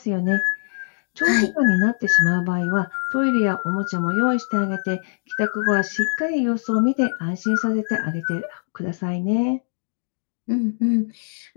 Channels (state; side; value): silent; right; digital silence